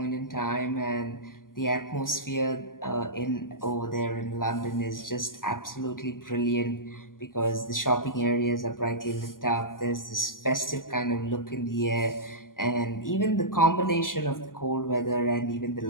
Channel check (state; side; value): late; right; 0.91 ms